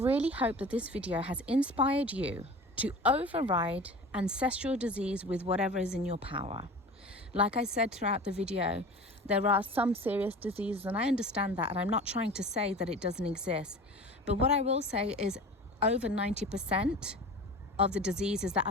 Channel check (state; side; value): normal; both; correlation 0.37